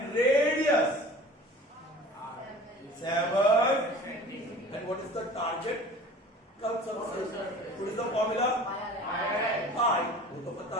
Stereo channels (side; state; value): both; normal; correlation 0.42